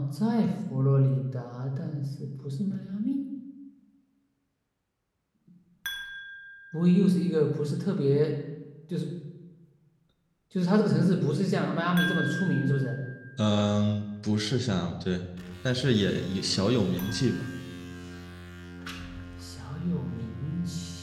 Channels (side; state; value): both; identical; correlation 1.00